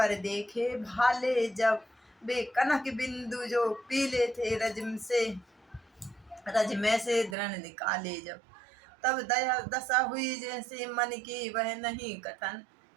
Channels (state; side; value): drops out; left; at 7.4 s